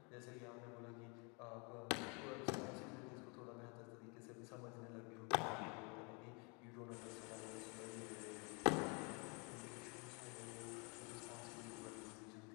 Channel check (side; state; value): right; quieter; 32.8 dB